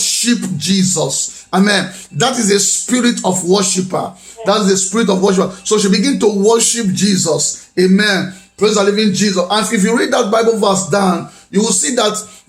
Jesus. Amen. That is a spirit of worshiper. That's the spirit of worshiper. So she began to worship Jesus. Amen. Praise the living Jesus. And if you read that Bible verse down, you will see that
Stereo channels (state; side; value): identical; both; correlation 1.00